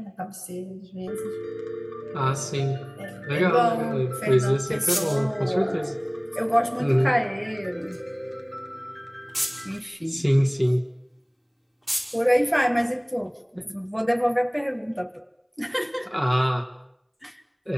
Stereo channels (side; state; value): both; identical; correlation 1.00